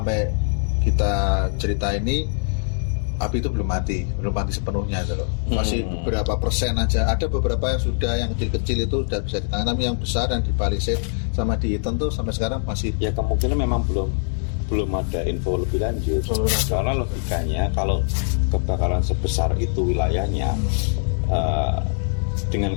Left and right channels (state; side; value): silent; right; 61 dB below the other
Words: kita cerita ini api itu belum mati sepenuhnya itu loh. Masih beberapa persen aja. Ada beberapa yang sudah, yang kecil-kecil itu sudah bisa ditangani, tapi yang besar yang di Palisade sama di Eaton tuh sampai sekarang masih. Ya kemungkinan memang belum ada info lebih lanjut. Karena logikanya kalau kebakaran sebesar itu wilayahnya